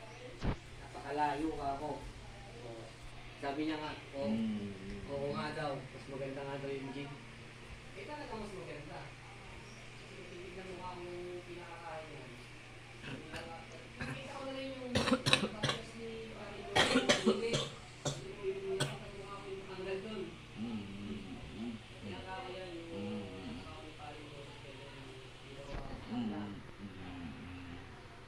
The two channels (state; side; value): identical; both; correlation 1.00